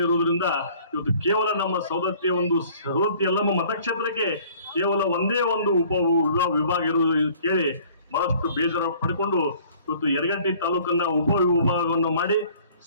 ಇರುವುದರಿಂದ ಇವತ್ತು ಕೇವಲ ನಮ್ಮ ಸವದತ್ತಿ ಯಲ್ಲಮ್ಮ ಮತಕ್ಷೇತ್ರಕ್ಕೆ ಕೇವಲ ಒಂದೇ ಒಂದು ವಿಭಾಗ ಇರುವುದು ಕೇಳಿ ಬಹಳಷ್ಟು ಬೇಜಾರು ಪಡ್ಕೊಂಡು ಇವತ್ತು ಯರಗಟ್ಟಿ ತಾಲೂಕನ್ನ ವಿಭಾಗವನ್ನು ಮಾಡಿ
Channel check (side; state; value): both; inverted; correlation -0.54